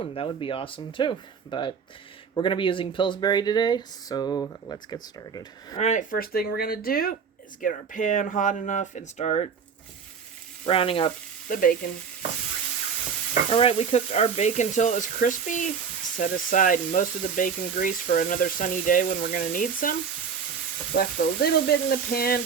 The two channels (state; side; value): quieter; left; 6.4 dB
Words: That would be awesome too. But we're going to be using Pilsbury today, so let's get started. Alright, first thing we're going to do is get our pan hot enough and start browning up the bacon. Alright, we cooked our bacon till it was crispy. Set aside most of the bacon grease for another sunny day when we're going to need some. Left a little bit in the pan